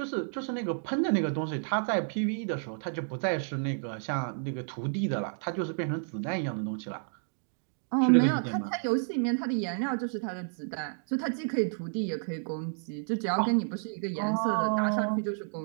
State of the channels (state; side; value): silent; left; digital silence